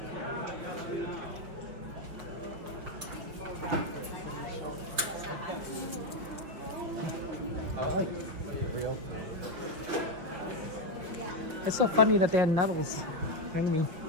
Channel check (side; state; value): left; late; 5.8 ms